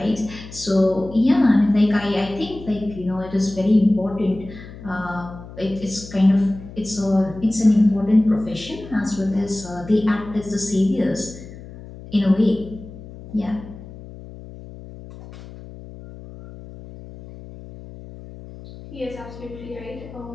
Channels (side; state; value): left; noise; hum, 15 dB below the sound